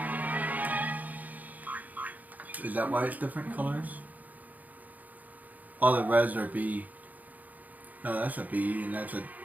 Is that why it's different colors? All the reds are B. No, that's a B, and that's a...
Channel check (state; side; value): late; left; 0.079 ms